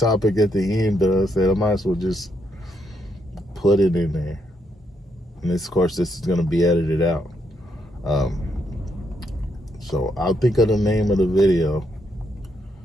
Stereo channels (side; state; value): both; normal; correlation 0.77